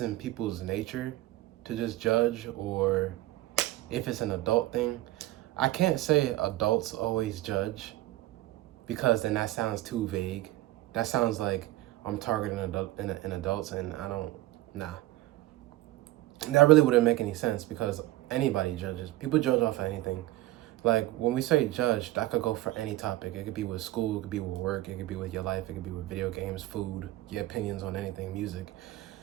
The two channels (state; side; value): quieter; left; 16.8 dB